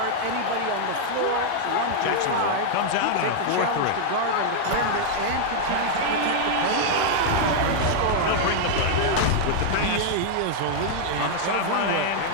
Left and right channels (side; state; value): both; different; correlation -0.01